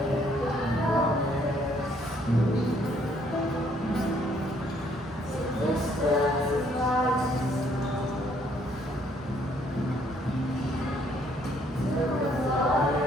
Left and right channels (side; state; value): both; normal; correlation 0.66